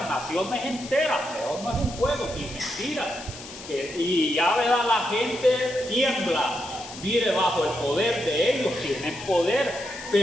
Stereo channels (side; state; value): left; noise; hiss, 14 dB below the sound